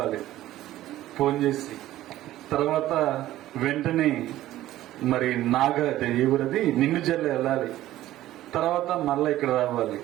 ఫోన్ చేసి, తర్వాత వెంటనే మరి ఎవరది నిన్ను జల్లు వెళ్ళాలి, తర్వాత మళ్ళా ఇక్కడ రావాలి.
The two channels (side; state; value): left; quieter; 14.6 dB